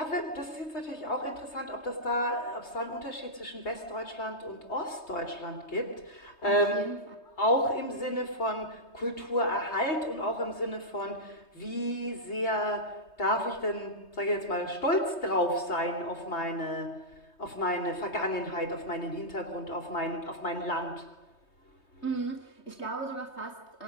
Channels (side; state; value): right; late; 3.2 ms